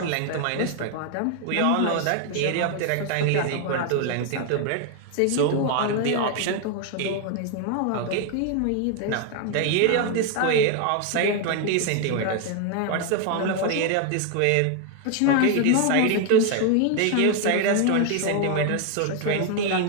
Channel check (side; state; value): both; different; correlation 0.01